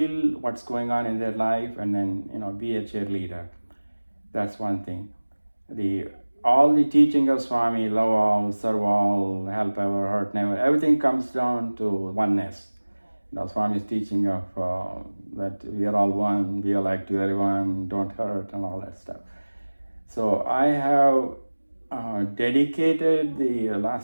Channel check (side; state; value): both; inverted; correlation -1.00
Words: what's going on in their life and then, be a cheerleader. That's one thing. All the teaching of Swami, love all, serve all, help ever, hurt never, everything comes down to oneness. Swami's teaching of that we are all one, be alike to everyone, don't hurt, and all that stuff. So I have dedicated the